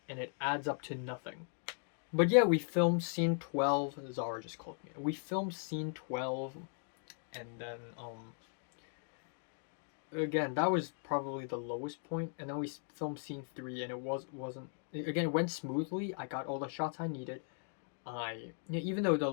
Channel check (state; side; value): silent; right; 52 dB below the other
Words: and it adds up to nothing. But yeah, we filmed scene 12. Zara just called me. We filmed scene 12, and then again, that was probably the lowest point, and then we filmed scene 3, and it wasn't again, it went smoothly. I got all the shots I needed. Even though the